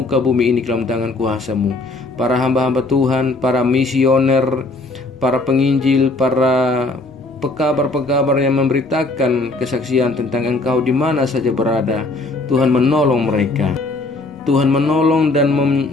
bumi ini ke dalam tangan kuasa-Mu. Para hamba-hamba Tuhan, para misioner, para penginjil, para pekabar-pekabar yang memberitakan kesaksian tentang Engkau di mana saja berada. Tuhan menolong mereka. Tuhan menolong dan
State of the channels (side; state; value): right; quieter; 3.1 dB